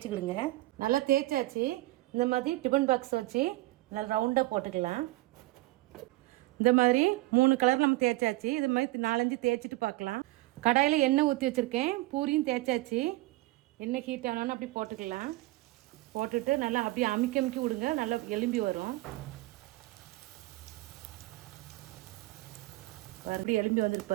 நல்லா தேய்ச்சாச்சு. இந்த மாதிரி டிஃபன் பாக்ஸ் வச்சு நல்லா ரவுண்டாக போட்டுக்கலாம். இந்த மாதிரி 3 கலர் நம்ம தேய்ச்சாச்சு. இது மாதிரி 4-5 தேய்ச்சிட்டு பார்க்கலாம். கடாயில் எண்ணெய் ஊற்றி வச்சுருக்கேன். பூரியும் தேய்ச்சாச்சு. எண்ணெய் ஹீட் ஆனாலும் அப்படி போட்டுக்கலாம். போட்டுட்டு நல்லா அப்படியே அமுக்கி விடுங்க, நல்லா எலும்பி வரும். அப்படி எலும்பி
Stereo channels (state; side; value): quieter; left; 19.8 dB